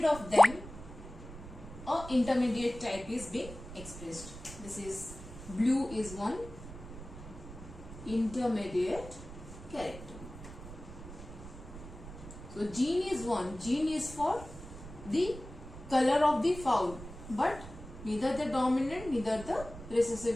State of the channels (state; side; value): noise; right; rumble, 13 dB below the sound